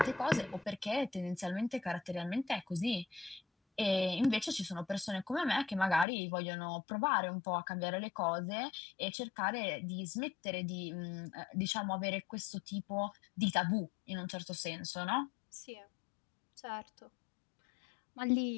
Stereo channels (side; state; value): right; drops out; at 6.1 s